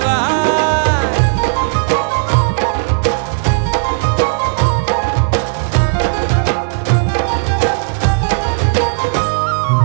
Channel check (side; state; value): left; silent; 70 dB below the other